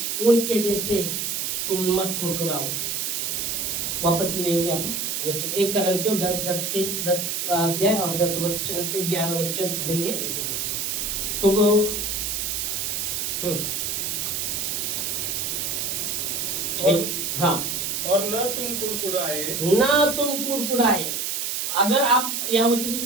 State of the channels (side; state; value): right; noise; hiss, 1 dB below the sound